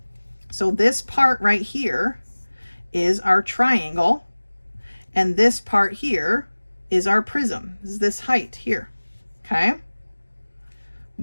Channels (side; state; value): both; inverted; correlation -1.00